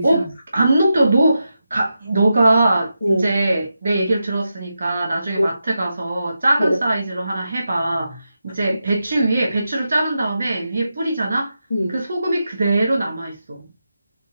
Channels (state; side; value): inverted; both; correlation -0.88